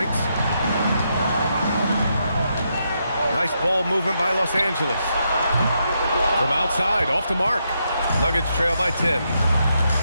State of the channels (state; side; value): inverted; both; correlation -0.80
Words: Nice ball movement by Los Angeles. From outside, off the mark. Nuggets trail by 10.